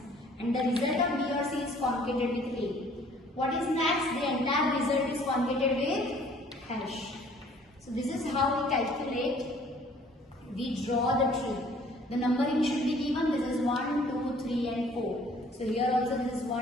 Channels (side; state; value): both; normal; correlation 0.56